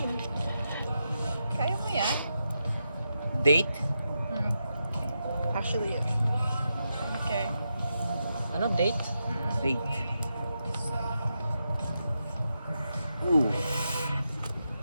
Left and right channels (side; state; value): both; inverted; correlation -0.86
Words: Kaya mo yan? Date? Actually, yeah. Okay. Ano, date? Date. Ooh.